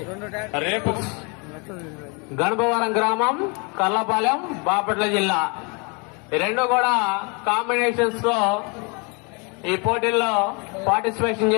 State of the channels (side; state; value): right; quieter; 32.0 dB